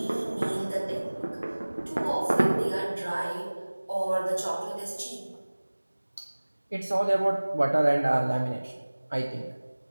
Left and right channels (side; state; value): both; inverted; correlation -1.00